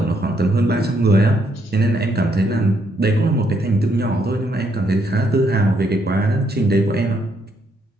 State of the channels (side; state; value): both; normal; correlation 0.74